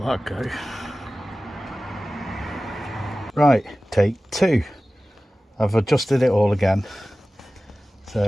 that go. Right, take two. I've adjusted it all again, so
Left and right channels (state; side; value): normal; both; correlation 0.97